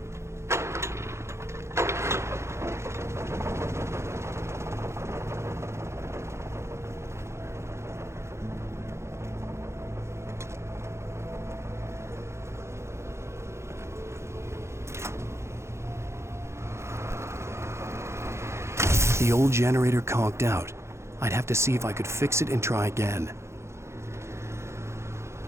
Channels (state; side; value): late; left; 0.13 ms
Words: The old generator conked out. I'd have to see if I could fix it and try again.